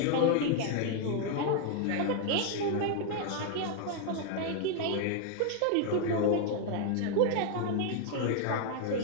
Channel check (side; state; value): both; different; correlation 0.00